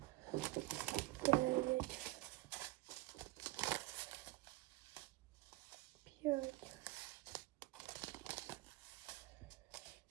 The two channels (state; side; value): quieter; left; 19.6 dB